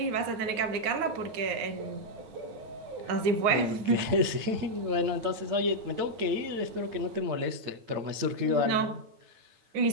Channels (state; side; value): late; left; 8.7 ms